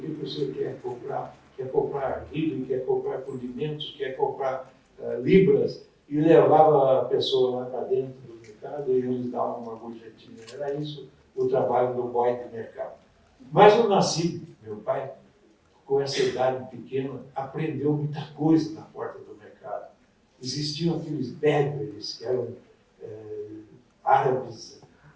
que você quer comprar? Quer comprar milho, quer comprar condimentos, quer comprar libras, e levava a pessoa lá para dentro do mercado e eles davam uma gorjetinha. Era isso o trabalho do boy de mercado. Mas eu nasci, meu pai, com essa idade pequena, aprendeu muita coisa na porta do mercado. Existiam aqueles berbers, que eram árabes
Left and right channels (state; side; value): identical; both; correlation 1.00